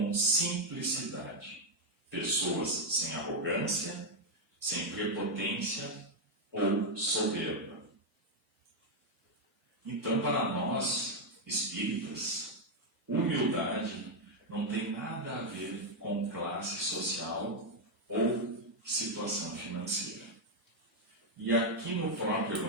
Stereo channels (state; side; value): normal; both; correlation 0.01